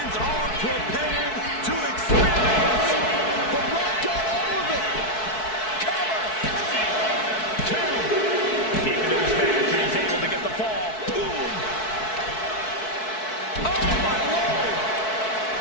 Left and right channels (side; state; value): right; late; 4.6 ms